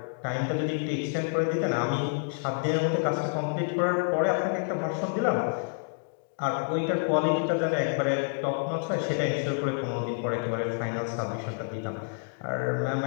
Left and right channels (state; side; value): silent; right; 57 dB below the other